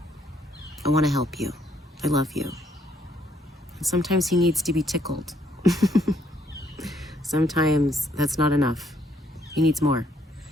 I want to help you. I love you. And sometimes he needs to be tickled. Sometimes that's not enough. He needs more.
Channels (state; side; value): normal; both; correlation 0.70